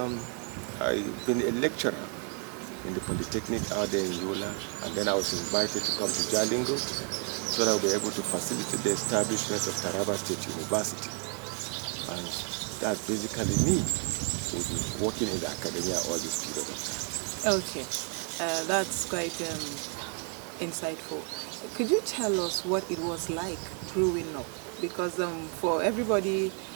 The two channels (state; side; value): quieter; left; 40.0 dB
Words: I've been a lecturer in the Polytechnic out there in Yola, and then I was invited to come to Jalingo so that I'll be able to facilitate the establishment of Taraba State University. And that's basically me, who's been working in the academia all this period of time. Okay, that's quite insightful. Could you tell us what it was like growing up? Because for everybody